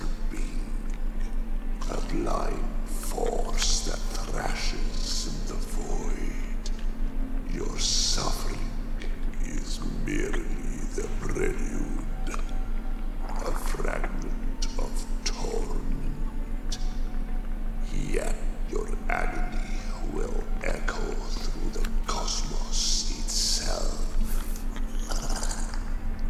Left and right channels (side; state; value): both; identical; correlation 1.00